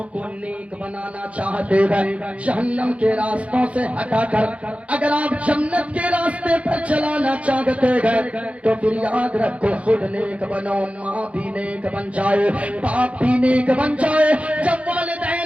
کو نیک بنانا چاہتے ہیں جہنم کے راستوں سے ہٹا کر اگر آپ جنت کے راستے پر چلانا چاہتے ہیں تو پھر یاد رکھو خود نیک بنو ماں بھی نیک بن جائے باپ بھی نیک بن جائے. جب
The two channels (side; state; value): left; late; 0.064 ms